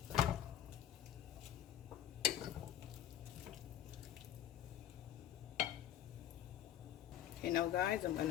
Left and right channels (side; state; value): right; quieter; 11.3 dB